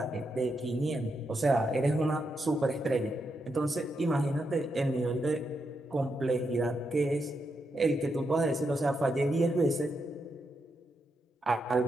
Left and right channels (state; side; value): normal; both; correlation 0.83